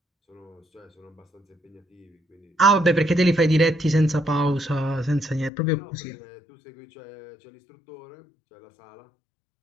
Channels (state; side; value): drops out; right; at 5.5 s